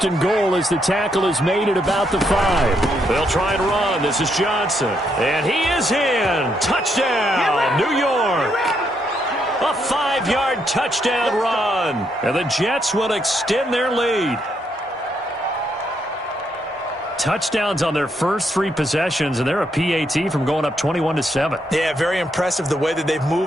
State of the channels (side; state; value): both; normal; correlation 0.76